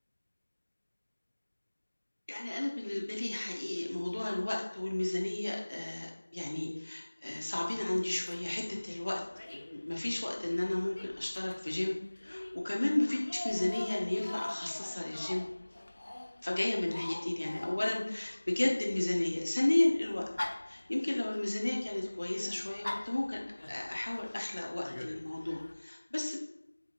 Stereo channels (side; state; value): both; inverted; correlation -1.00